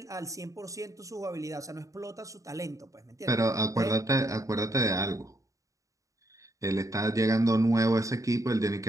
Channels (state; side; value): late; left; 0.16 ms